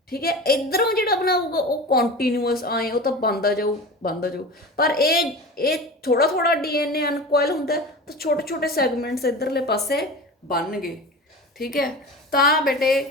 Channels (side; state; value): both; normal; correlation 0.32